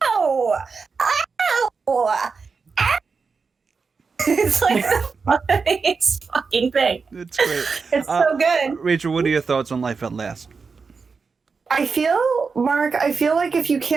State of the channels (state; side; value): quieter; left; 5.0 dB